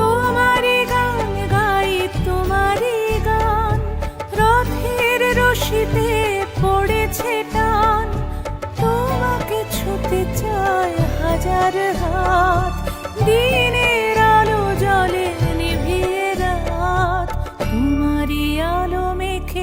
গান গাই তোমারি গান, রথের রশিতে পড়েছে টান। তোমাকে ছুতে চায় হাজার হাত, দিন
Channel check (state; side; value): identical; both; correlation 1.00